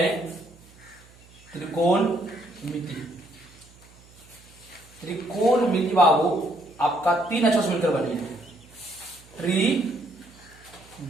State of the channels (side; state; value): right; noise; hum, 25 dB below the sound